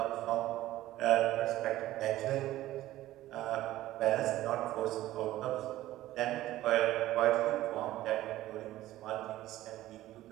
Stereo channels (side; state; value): left; quieter; 15.2 dB